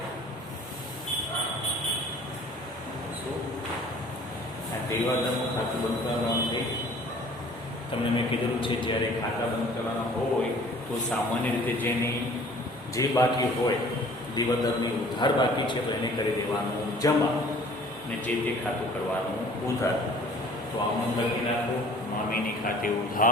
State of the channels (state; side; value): normal; both; correlation 0.50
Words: દેવાદારનું ખાતું બંધ કરવાનું છે. તમને મેં કીધેલું છે જ્યારે ખાતા બંધ કરવાના હોય તો સામાન્ય રીતે જે બાકી હોય દેવાદારની ઉધાર બાકી છે તો એને કરી દેવાનું જમા અને જે તે ખાતું કરવાનું ઉધાર. તો આમાં લખી નાખો મામીની ખાતે